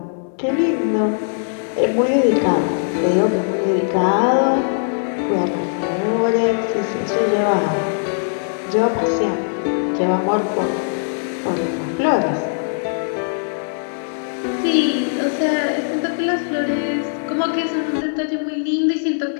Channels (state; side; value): silent; right; digital silence